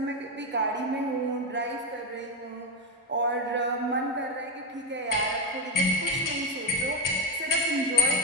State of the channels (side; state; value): both; normal; correlation 0.13